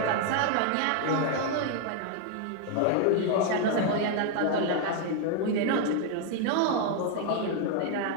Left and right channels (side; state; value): both; different; correlation 0.00